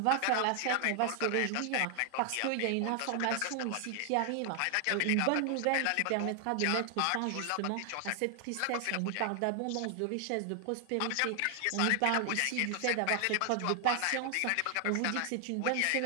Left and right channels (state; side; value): different; both; correlation 0.00